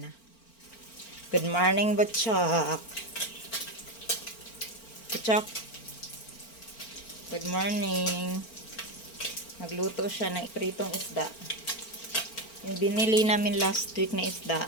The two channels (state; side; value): late; right; 4.4 ms